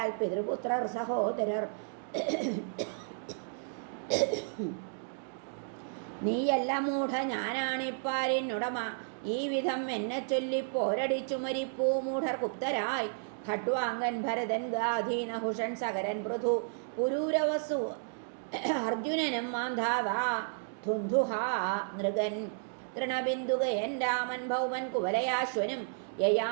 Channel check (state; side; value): silent; left; digital silence